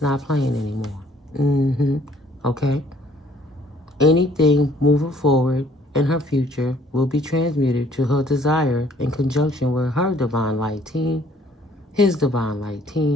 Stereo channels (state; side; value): normal; both; correlation 0.60